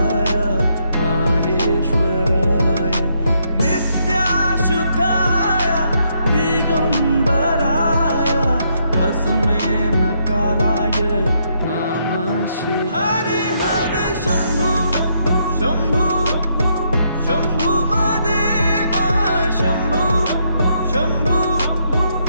माहेश्वराय नित्याशुद्धाय दिगंबराय तस्मै नकाराय नमः शिवाय हरि हर शंभू शंभू शंभू महादेवा शंभू शंभू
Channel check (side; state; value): both; inverted; correlation -0.75